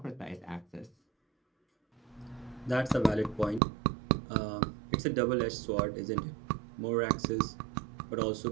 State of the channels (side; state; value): left; drops out; at 3.6 s